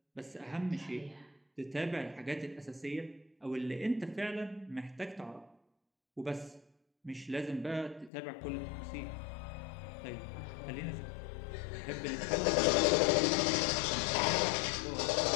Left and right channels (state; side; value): drops out; right; at 8.1 s